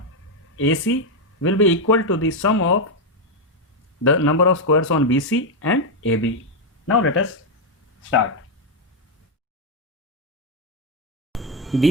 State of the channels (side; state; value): both; normal; correlation 0.02